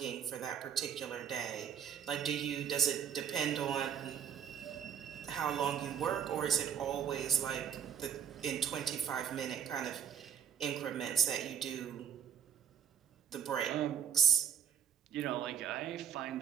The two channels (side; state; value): left; quieter; 8.3 dB